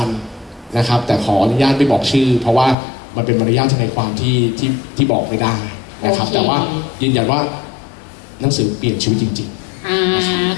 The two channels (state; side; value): drops out; right; at 2.8 s